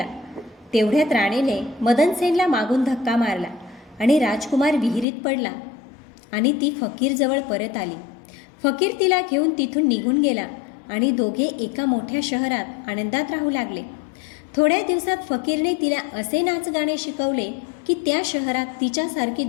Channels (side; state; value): right; drops out; at 5.1 s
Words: तेवढ्यात राणीने मदनसेनला मागून धक्का मारला आणि राजकुमार विहिरीत पडला आणि ती फकीरजवळ परत आली. फकीर तिला घेऊन तिथून निघून गेला आणि दोघे एका मोठ्या शहरात आनंदात राहू लागले. थोड्या दिवसात फकीरने तिला असे नाचगाणे शिकवले की त्या शहरात तिच्यासारखी